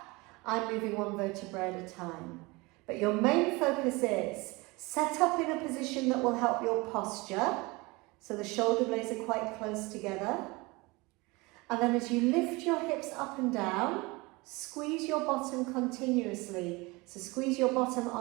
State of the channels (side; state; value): left; quieter; 24.3 dB